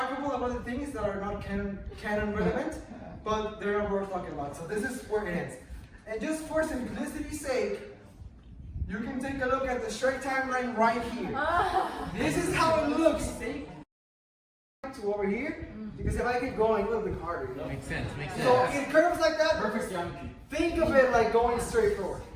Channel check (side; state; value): both; identical; correlation 1.00